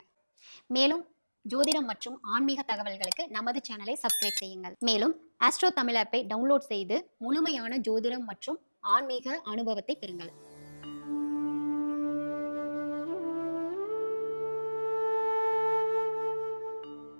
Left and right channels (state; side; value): inverted; both; correlation -1.00